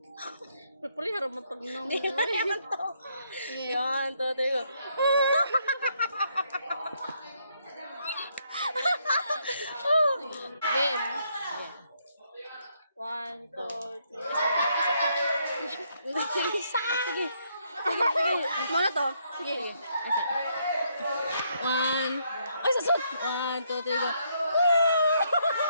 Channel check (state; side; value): inverted; both; correlation -0.74